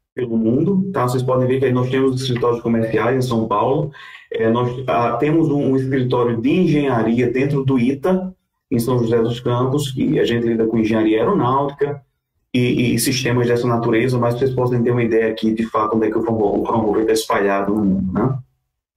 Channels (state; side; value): identical; both; correlation 1.00